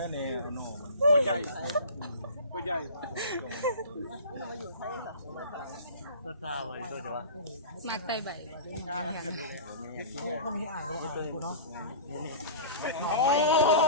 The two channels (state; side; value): inverted; both; correlation -0.36